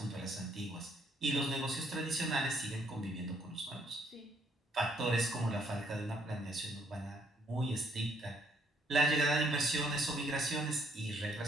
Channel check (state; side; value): normal; both; correlation 0.68